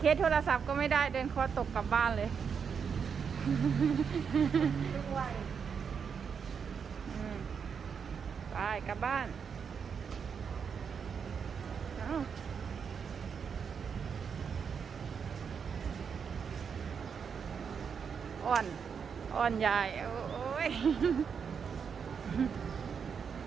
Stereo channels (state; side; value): quieter; left; 6.6 dB